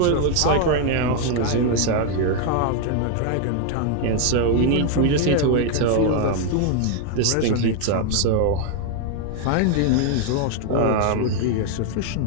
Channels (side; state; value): both; different; correlation 0.01